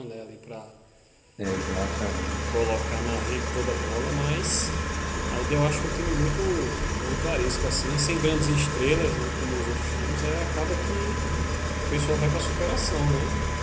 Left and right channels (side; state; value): both; identical; correlation 1.00